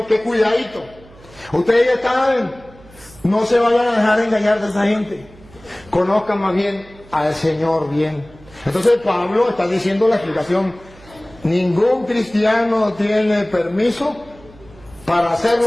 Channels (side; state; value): right; noise; hum, 24 dB below the sound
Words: que cuidadito. Ustedes ya saben, no se vayan a dejar engañar de esa gente. Conozcan más bien al Señor bien. Entonces Pablo está diciendo la explicación. Ningún cristiano tiene permiso para hacer